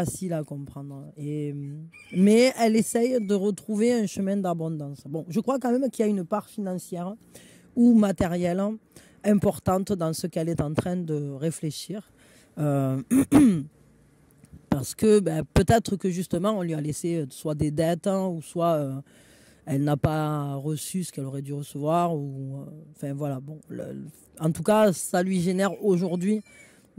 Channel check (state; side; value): identical; both; correlation 1.00